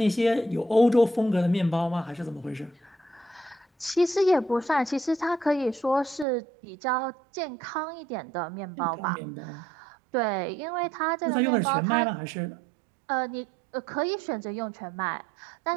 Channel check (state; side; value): drops out; left; at 6.2 s